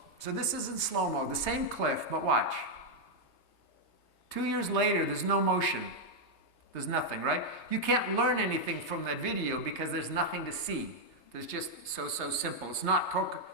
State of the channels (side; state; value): right; late; 3.3 ms